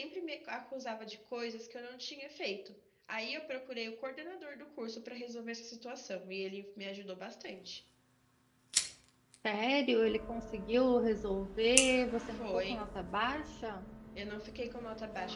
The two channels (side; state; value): both; identical; correlation 1.00